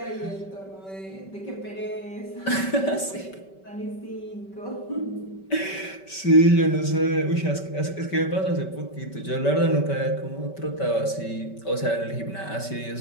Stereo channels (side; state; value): right; late; 5.2 ms